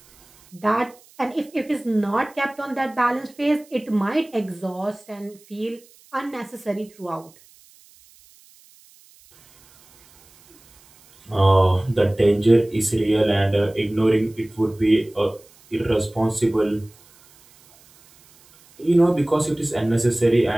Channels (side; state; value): right; noise; hiss, 28 dB below the sound